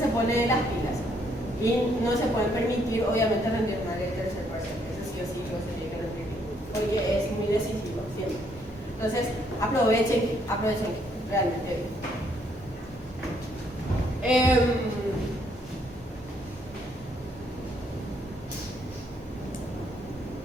pone las pilas y no se puede permitir obviamente rendir mal el tercer parcial, eso sí o sí lo se tiene que rendir porque es muy decisivo siempre. Entonces, aprovechen realmente.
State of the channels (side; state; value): both; normal; correlation 0.70